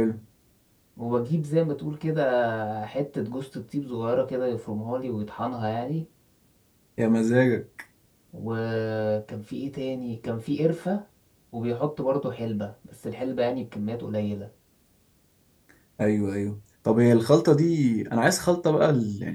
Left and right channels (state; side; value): identical; both; correlation 1.00